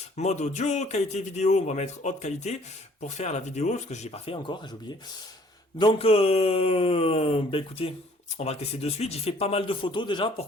mode audio, qualité vidéo, on va mettre haute qualité pour faire la vidéo, parce que je l'ai pas fait encore, j'ai oublié. Donc, écoutez, on va le tester de suite. J'ai fait pas mal de photos déjà pour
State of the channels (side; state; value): both; normal; correlation 0.58